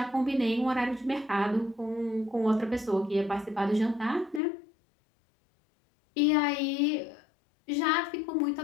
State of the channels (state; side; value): drops out; right; at 4.4 s